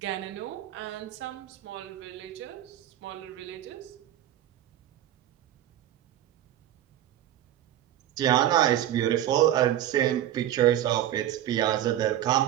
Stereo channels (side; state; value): left; quieter; 12.3 dB